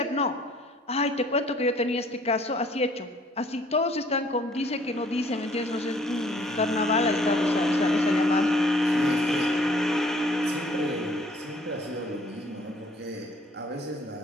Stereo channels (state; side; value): normal; both; correlation 0.59